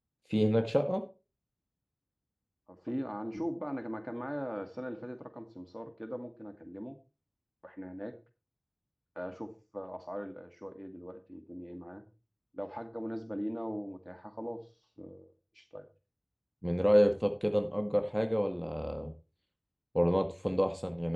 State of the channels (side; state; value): both; identical; correlation 1.00